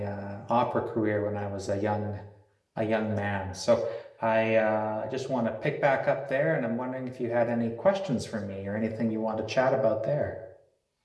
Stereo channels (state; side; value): identical; both; correlation 1.00